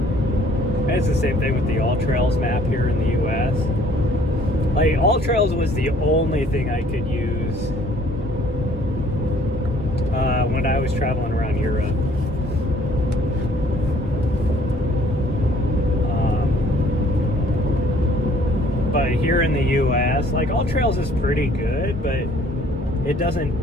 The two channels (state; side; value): normal; both; correlation 0.58